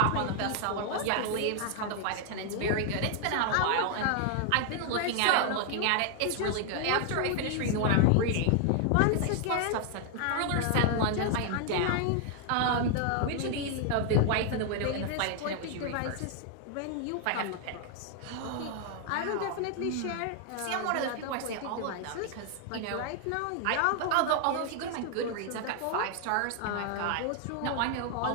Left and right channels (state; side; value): different; both; correlation 0.00